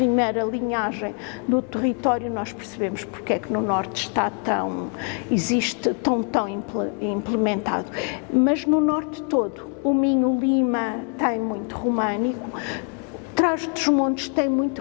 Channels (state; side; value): quieter; right; 39.9 dB